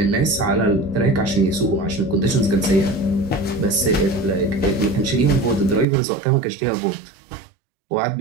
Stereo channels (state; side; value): drops out; left; at 5.9 s